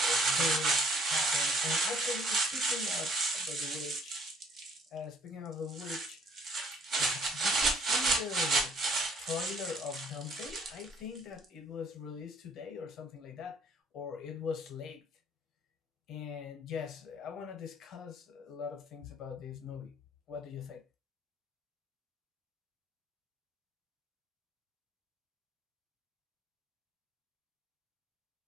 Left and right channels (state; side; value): normal; both; correlation 0.58